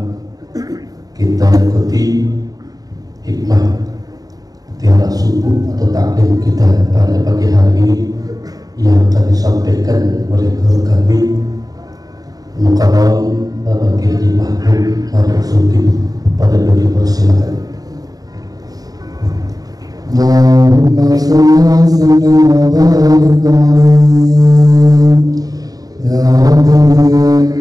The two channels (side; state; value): left; late; 0.18 ms